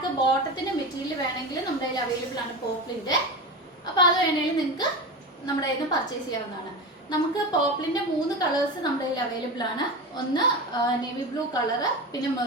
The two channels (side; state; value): both; normal; correlation 0.24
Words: ബോട്ടത്തിൻ്റെ മെറ്റീരിയൽ വേണമെങ്കിൽ നമ്മുടെ കയ്യിൽ അവൈലബിൾ ആണ് പോപ്ലിൻ്റെ. അപ്പോൾ അത് വേണമെങ്കിൽ നിങ്ങൾക്ക് നമ്മുടെ കയ്യിൽ നിന്ന് പർച്ചേസ് ചെയ്യാവുന്നതാണ്. നമുക്ക് പോപ്ലിൻ്റെ 3 കളേഴ്സ് നമ്മുടെ കയ്യിൽ അവൈലബിൾ ആണ്. ഒന്ന് നേവി ബ്ലൂ കളറ്, പിന്നെ